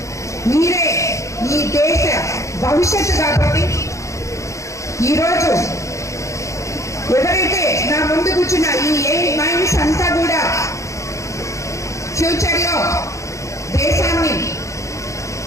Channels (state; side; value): late; right; 0.15 ms